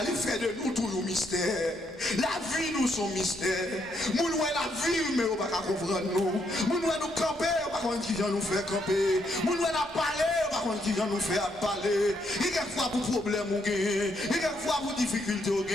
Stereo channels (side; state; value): both; normal; correlation 0.75